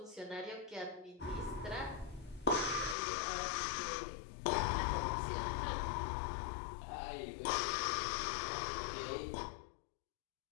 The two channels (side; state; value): right; drops out; at 3.0 s